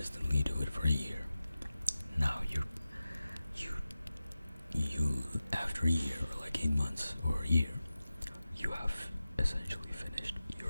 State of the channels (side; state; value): both; inverted; correlation -0.95